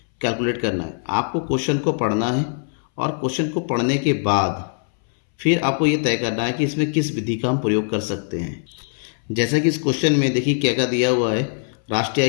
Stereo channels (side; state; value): right; silent; 63 dB below the other